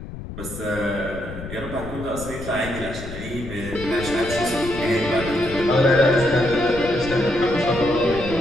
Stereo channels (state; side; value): noise; left; rumble, 11 dB below the sound